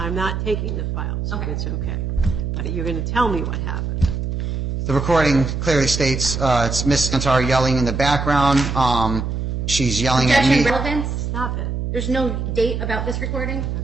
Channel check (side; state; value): right; noise; hum, 3 dB below the sound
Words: not taking the file, so okay. It's okay. But you're going to tell me what happened. The recording clearly states it's Miss Antar yelling in the background. She's yelling at me. Relevance? Stop it. There's no date about this recording?